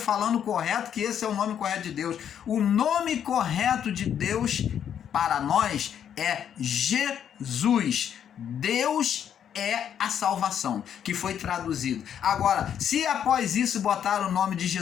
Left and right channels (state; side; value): quieter; right; 9.0 dB